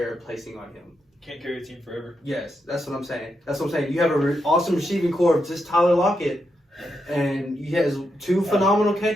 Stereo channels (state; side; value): normal; both; correlation 0.83